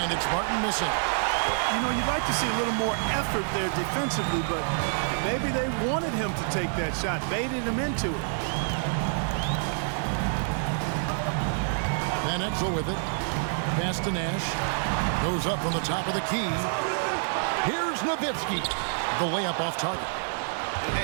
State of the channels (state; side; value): silent; left; digital silence